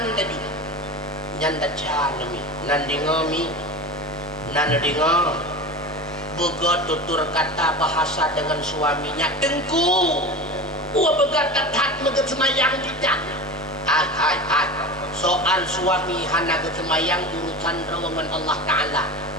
tadi nyanda canemi nandingami nanadinga boga tutur kata bahasa dengan suaminya dengku begat tatat megat semayang tidak soal suami hana semayang urusan rawangan Allah Ta'ala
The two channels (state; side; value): noise; right; hum, 25 dB below the sound